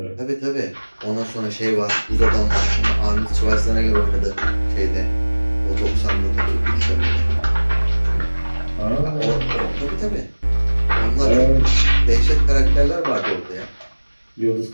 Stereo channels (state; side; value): inverted; both; correlation -1.00